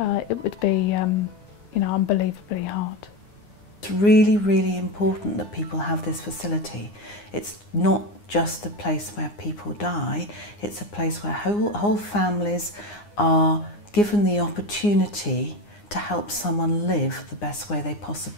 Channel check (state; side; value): late; right; 9.7 ms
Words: would be, you know, unbelievably hard. It's really, really important that people have this facility. It's not just a place where people die, it's a place where whole families are given the opportunity to help someone live the best way they